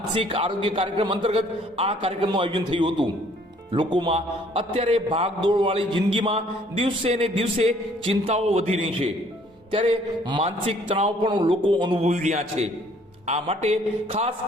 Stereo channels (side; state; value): both; normal; correlation 0.60